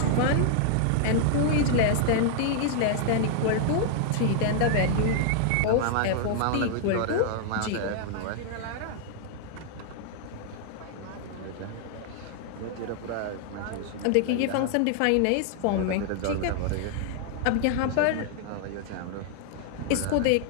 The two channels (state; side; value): different; both; correlation -0.01